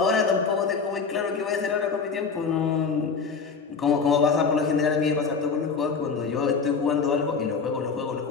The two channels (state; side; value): quieter; right; 5.2 dB